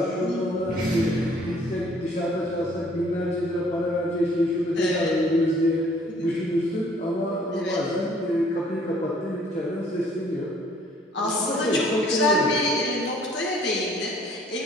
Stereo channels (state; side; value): normal; both; correlation 0.59